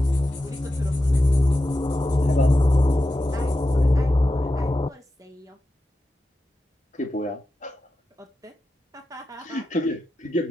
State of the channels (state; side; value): normal; both; correlation 0.91